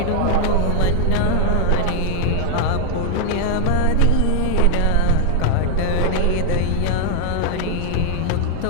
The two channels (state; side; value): different; both; correlation 0.00